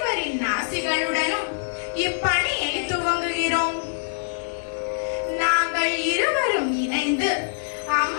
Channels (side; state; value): right; silent; digital silence